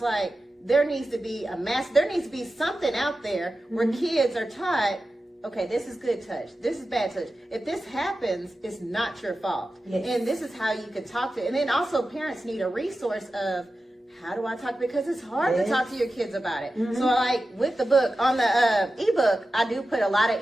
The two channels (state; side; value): normal; both; correlation 0.93